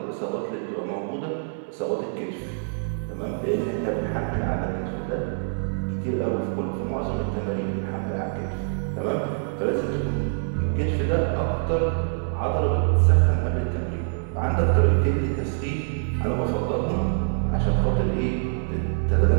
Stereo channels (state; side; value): silent; left; digital silence